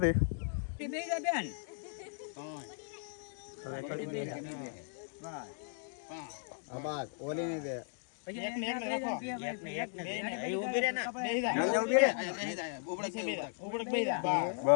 ઓલી નહીં દે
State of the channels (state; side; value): silent; right; digital silence